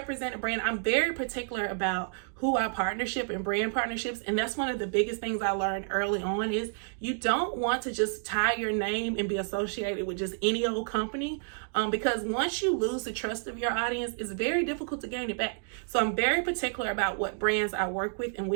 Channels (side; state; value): left; silent; digital silence